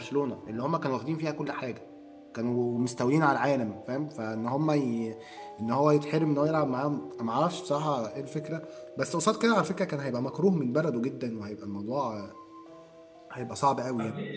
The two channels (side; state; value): both; identical; correlation 1.00